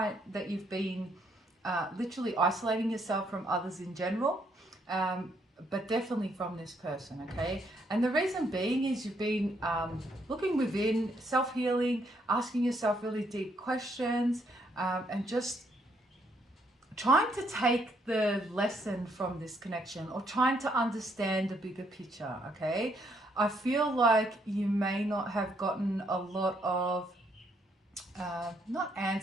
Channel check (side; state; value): both; normal; correlation 0.72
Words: that you've been literally isolating yourself from others in general, but definitely from this person, okay? And the reason being is you've been looking within, self-healing, asking yourself really deep questions, and just trying to take the lesson from this connection or trying to understand the bigger picture, okay? I feel like you may not have gotten a lot of, not